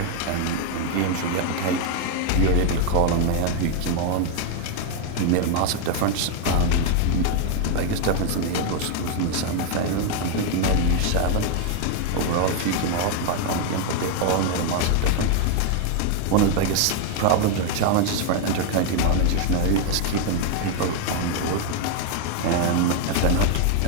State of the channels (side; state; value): both; different; correlation 0.01